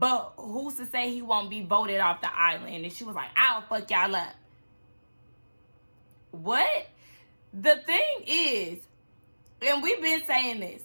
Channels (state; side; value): inverted; both; correlation -1.00